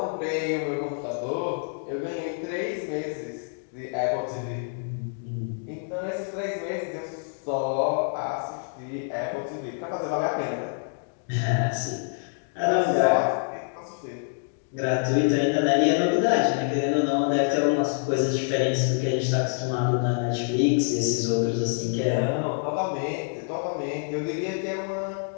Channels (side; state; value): right; silent; 60 dB below the other